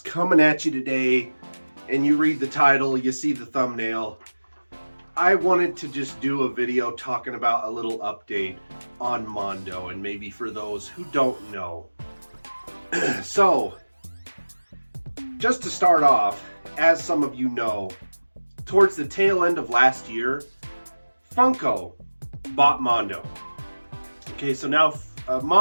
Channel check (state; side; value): inverted; both; correlation -1.00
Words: at you today, and you read the title, you see the thumbnail. I wanted to just do a video talking about a little update on Mondo, and maybe for those who don't know. So, just to start off, as some of you know, towards the tail end of last year, Funko bought Mondo. Okay, so now